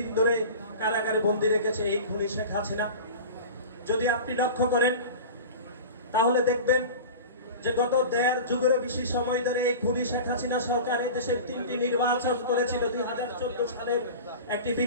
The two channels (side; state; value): both; inverted; correlation -0.34